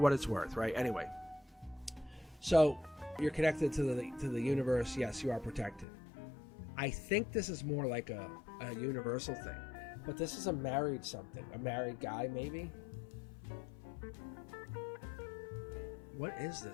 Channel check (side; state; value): right; drops out; at 5.9 s